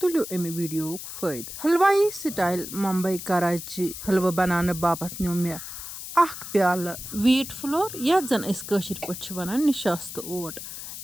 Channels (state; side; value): noise; left; hiss, 10 dB below the sound